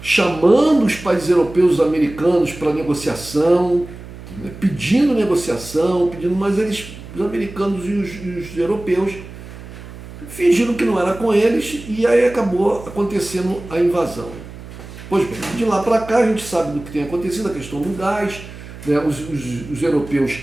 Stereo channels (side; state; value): right; noise; hum, 15 dB below the sound